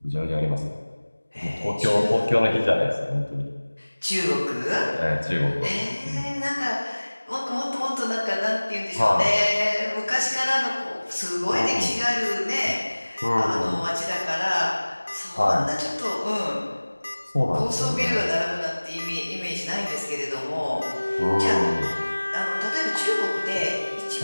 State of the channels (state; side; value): inverted; both; correlation -1.00